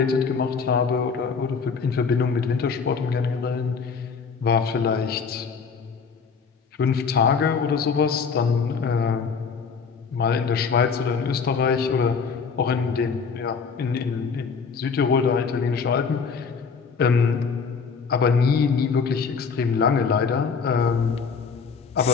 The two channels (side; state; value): right; quieter; 5.6 dB